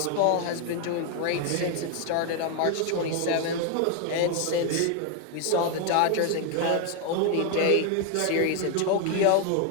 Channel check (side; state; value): both; different; correlation 0.01